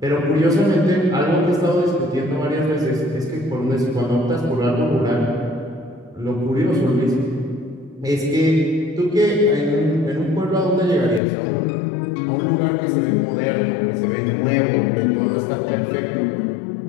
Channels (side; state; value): right; drops out; at 11.2 s